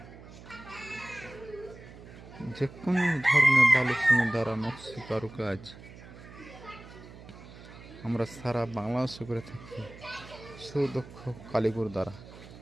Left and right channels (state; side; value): noise; right; hum, 17 dB below the sound